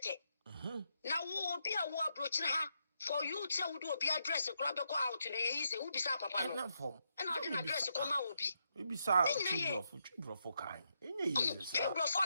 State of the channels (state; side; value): inverted; both; correlation -0.80